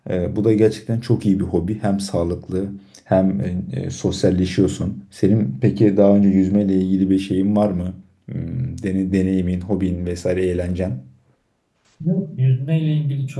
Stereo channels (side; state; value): both; identical; correlation 1.00